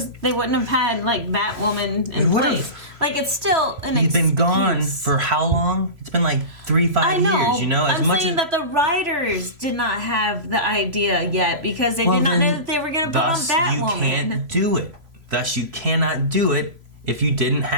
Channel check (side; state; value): left; late; 3.0 ms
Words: they wouldn't have had, like, Batwoman in place. Like, it's still an He's excuse. been gone for how long? It's been like 3-5 years, you know? I'm saying that the writers did not have the idea yet because they did not know that they were going to put on Batwoman. You can't do it. Thus, you cannot do it if you didn't